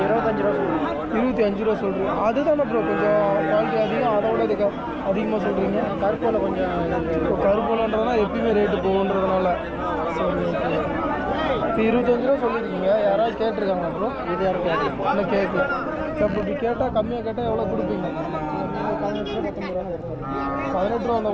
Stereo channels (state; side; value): identical; both; correlation 1.00